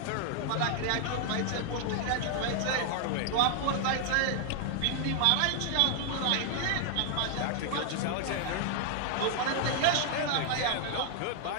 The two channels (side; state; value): both; different; correlation 0.00